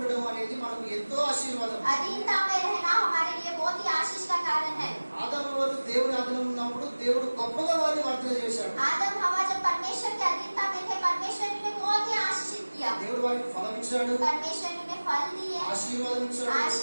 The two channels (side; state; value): both; inverted; correlation -1.00